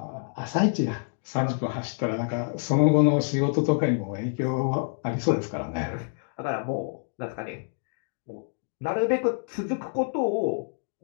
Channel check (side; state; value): right; silent; digital silence